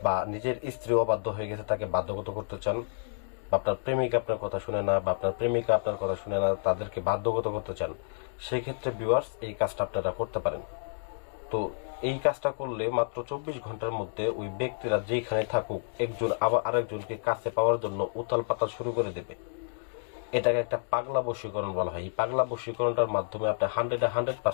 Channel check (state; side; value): silent; right; digital silence